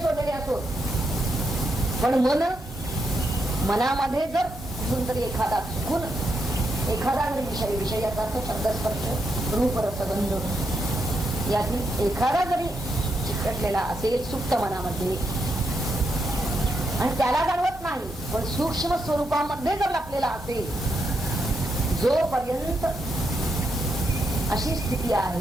सोडलेले असो, पण मनामध्ये जर कुठून तरी एखादा चुकून एखादा जरी विषयाचा अर्थ शब्दस्पर्श रूप रसगंध यातील एखादा जरी चिकटलेला असेल सुप्त मनामध्ये आणि त्याला जाणवत नाही, पण सूक्ष्म स्वरूपामध्ये जर लपलेला असेल, जोपर्यंत अशी स्थिती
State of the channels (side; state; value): both; normal; correlation 0.81